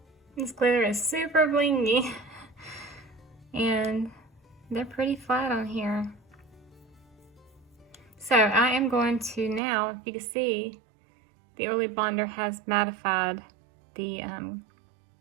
This glitter is super blingy and they're pretty flat on here. So I am going to now, if you can see, the early bonder has mattified the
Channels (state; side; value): drops out; left; at 9.6 s